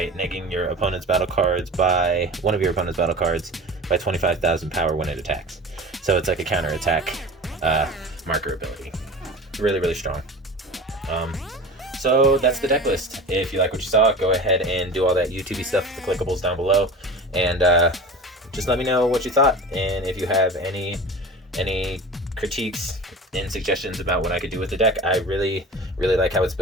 negging your opponent's battle cards by one of your opponent's battle cards by 25,000 power when it attacks. So it's like a counter attack marker ability. Really, really strong. So that's the deck list. If you like what you saw, go ahead and do all that YouTube stuff with the clickables down below, and just let me know what you thought, and if you have any critiques and suggestions about what I could do with the deck. I really, really like how it's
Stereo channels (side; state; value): both; normal; correlation 0.35